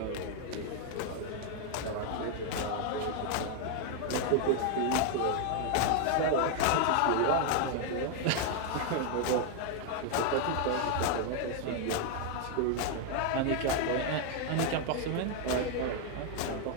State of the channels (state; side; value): different; both; correlation 0.00